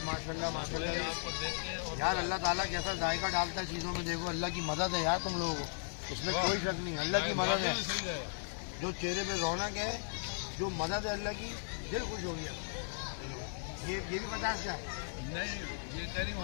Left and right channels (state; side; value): silent; right; 53 dB below the other